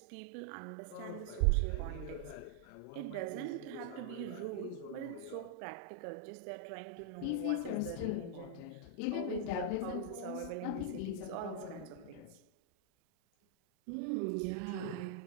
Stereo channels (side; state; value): both; different; correlation -0.01